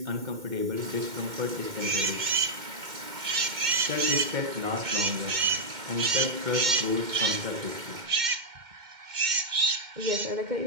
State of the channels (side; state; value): left; late; 2.1 ms